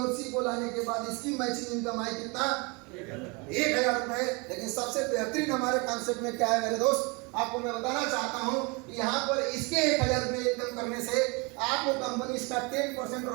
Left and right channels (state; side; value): quieter; left; 29.2 dB